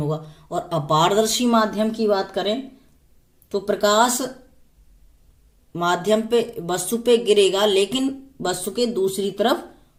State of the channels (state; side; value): identical; both; correlation 1.00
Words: और अपारदर्शी माध्यम की बात करें तो प्रकाश माध्यम पे वस्तु पे गिरेगा लेकिन वस्तु के दूसरी तरफ